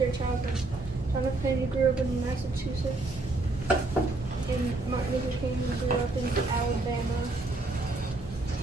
childhood. John F. Kennedy grew up in Massachusetts, and Martin Luther King grew up in Alabama.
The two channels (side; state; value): left; quieter; 3.0 dB